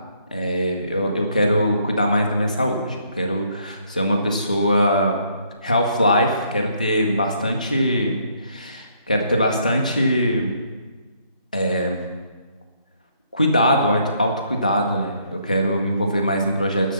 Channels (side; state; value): both; inverted; correlation -0.68